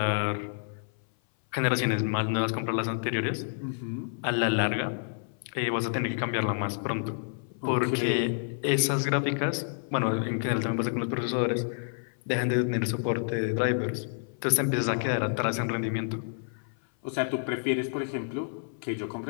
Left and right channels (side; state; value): right; silent; 56 dB below the other